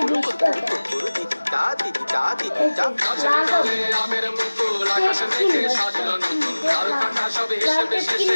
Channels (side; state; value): both; inverted; correlation -1.00